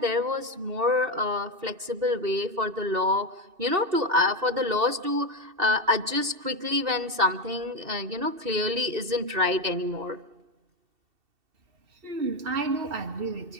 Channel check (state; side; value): late; left; 2.7 ms